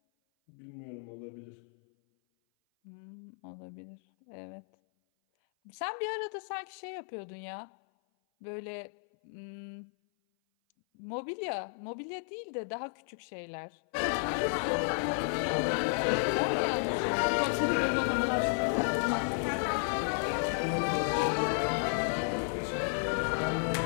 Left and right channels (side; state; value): right; silent; 56 dB below the other